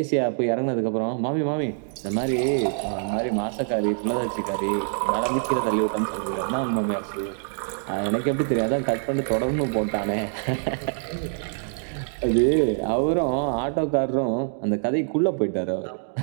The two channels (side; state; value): left; silent; digital silence